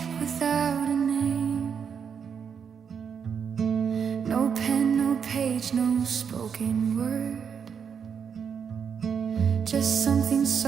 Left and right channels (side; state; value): left; quieter; 6.9 dB